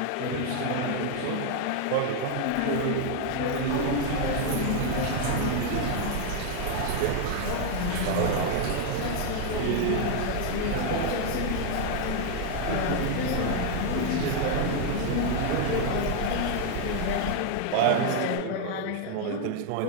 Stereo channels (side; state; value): both; different; correlation 0.00